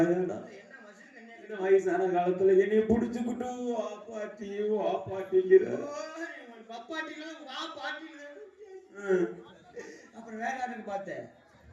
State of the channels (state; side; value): identical; both; correlation 1.00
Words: என்ன மசில் கண்ணியா? இந்த வயசான காலத்துல என்னைய புடிச்சுக்கிட்டு வா பாட்டிங்கிற. பப்பாட்டிலாம் வா பாட்டில. அப்புறம் வேற யாருக்கு பார்த்தேன்?